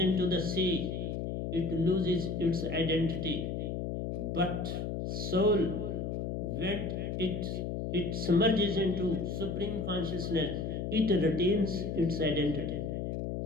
the sea, it loses its identity. But soul, when it submerges into supreme consciousness, it retains its identity.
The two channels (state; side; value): noise; left; hum, 3 dB below the sound